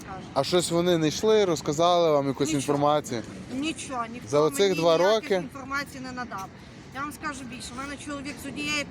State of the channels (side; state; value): both; identical; correlation 1.00